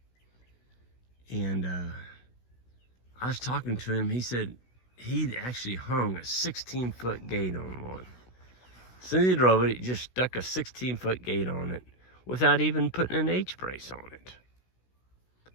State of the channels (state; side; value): late; right; 16 ms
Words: And I was talking to him. He said he'd actually hung a 16-foot gate on one. As soon as he drove it, he just stuck a 16-foot gate on it without even putting an H brace on it.